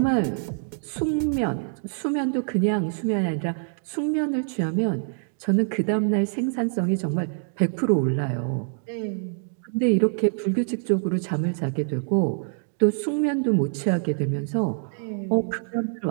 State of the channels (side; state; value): left; silent; digital silence